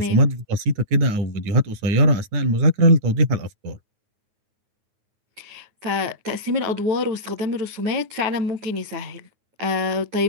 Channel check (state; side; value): late; left; 9.6 ms